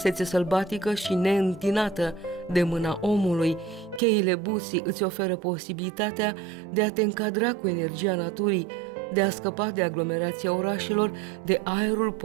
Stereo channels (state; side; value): drops out; left; at 4.0 s